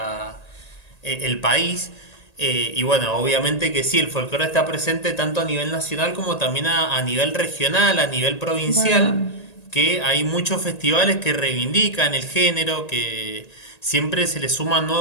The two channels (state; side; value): late; right; 1.8 ms